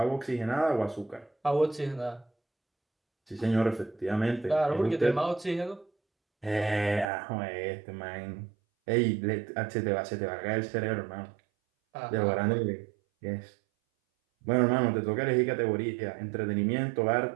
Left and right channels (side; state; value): left; drops out; at 7.1 s